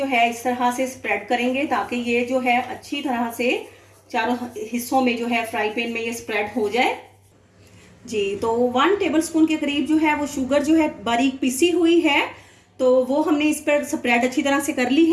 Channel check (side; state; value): both; identical; correlation 1.00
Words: है इस तरह से स्प्रेड करेंगे ताकि ये जो है अच्छी तरह से चारों हिस्सों में जो है फ्राई पैन में ये स्प्रेड हो जाए जी। तो 1 टेबल स्पून के करीब जो है वो शुगर जो है बारीक पिसी हुई है तो वो हमने इस पर स्प्रेड अच्छी तरह से कर ली